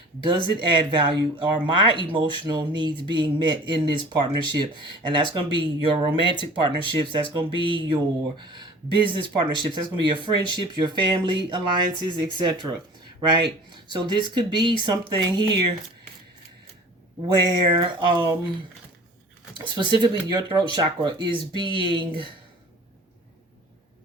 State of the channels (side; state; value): both; normal; correlation 0.44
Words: Does it add value? Are my emotional needs being met in this partnership? And that's going to be your romantic partnerships. That's going to be your business partnerships. That's going to be your friendships, your family alliances, etc. Right? So this could be something here where specifically your throat chakra is being,